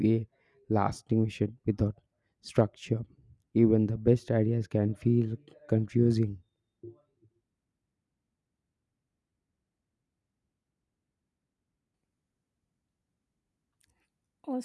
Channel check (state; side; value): identical; both; correlation 1.00